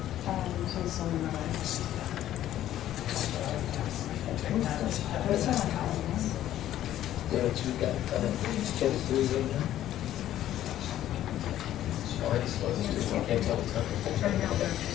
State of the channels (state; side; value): quieter; right; 12.5 dB